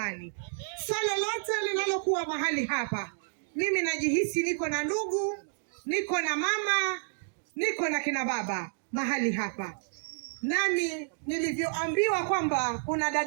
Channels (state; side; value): silent; left; digital silence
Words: Swala lote linalokuwa mahali hapa, mimi najihisi niko na ndugu, niko na mama, niko na kina baba mahali hapa. Nami nilivyoambiwa kwamba kuna